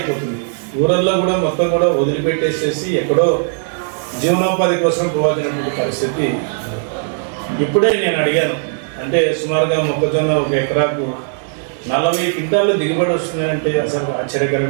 ఊరల్లో కూడా మొత్తం కూడా వదిలిపెట్టేసేసి ఎక్కడో జీవనోపాధి కోసం పోవాల్సినటువంటి పరిస్థితి. ఇప్పుడే నేను అడిగాను, అంటే సుమారుగా మొక్కజొన్న 1 ఎకరాకు 40 క్వింటాలు దిగుబడి వస్తుందంటే అసలు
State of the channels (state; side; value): silent; left; digital silence